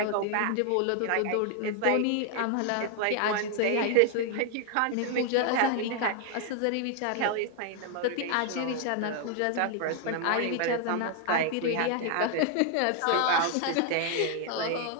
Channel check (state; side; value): different; both; correlation 0.00